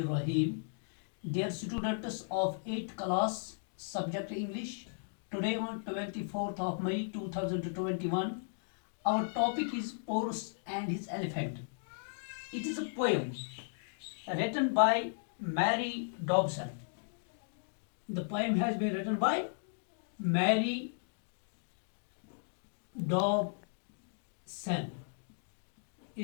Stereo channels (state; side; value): silent; right; digital silence